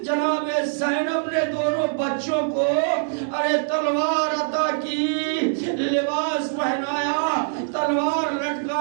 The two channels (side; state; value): left; silent; 63 dB below the other